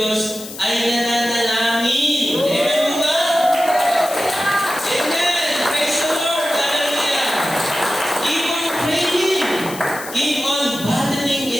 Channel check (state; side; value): noise; left; hiss, 13 dB below the sound